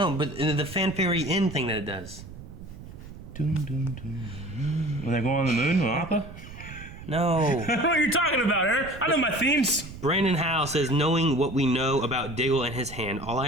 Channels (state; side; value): noise; right; rumble, 15 dB below the sound